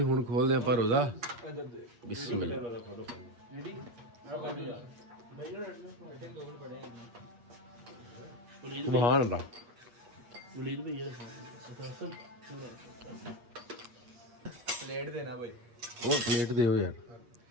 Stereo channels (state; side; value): late; left; 8.4 ms